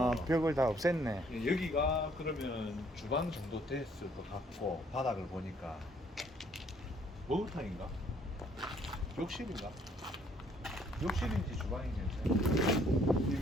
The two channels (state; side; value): normal; both; correlation 0.64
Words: 봐서 벽을 다 없앴네. 예, 여기가 그러면 주방 정도 됐을 것 같고 바닥을 보니까 목욕탕인가? 욕실인가? 욕실인지 주방인지